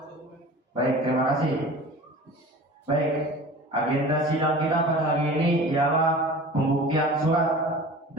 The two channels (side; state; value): both; normal; correlation 0.39